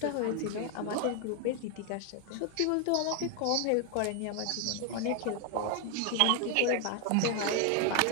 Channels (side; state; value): both; different; correlation 0.01